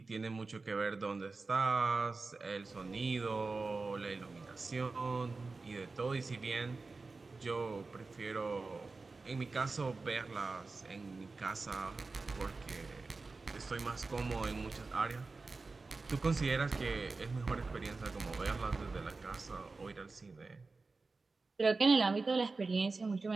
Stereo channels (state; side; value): quieter; left; 3.8 dB